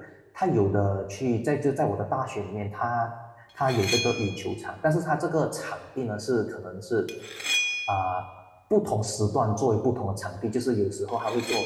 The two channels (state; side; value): identical; both; correlation 1.00